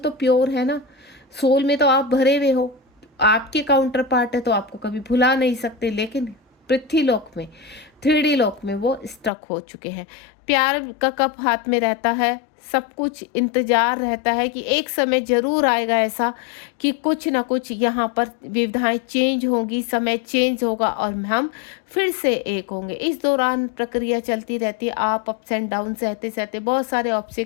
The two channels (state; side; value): drops out; right; at 9.3 s